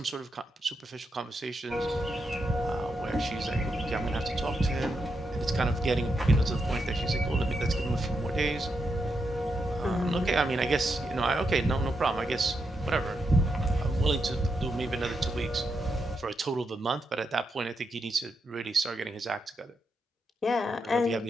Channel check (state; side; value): normal; both; correlation 0.83